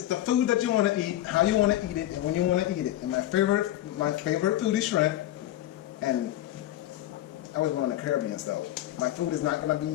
the food that you want to eat, how you want to eat it, and when you want to eat it. And my favorite food is shrimp. And I was born in the Caribbean, so my food is not gonna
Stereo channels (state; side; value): quieter; right; 14.0 dB